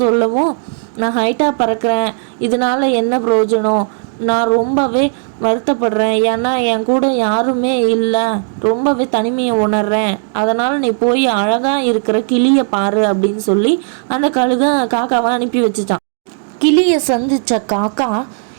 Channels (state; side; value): silent; left; digital silence